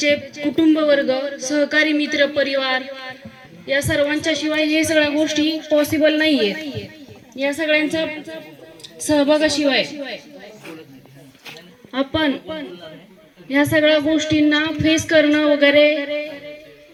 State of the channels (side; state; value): both; identical; correlation 1.00